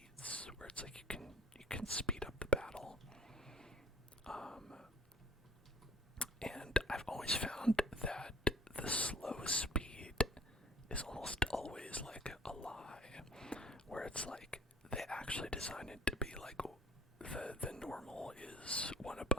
where it's like you can speed up the battle. And I've always found that the slow speed is almost always like a lie, where it's like they actually designed it to be like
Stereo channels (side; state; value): both; normal; correlation 0.49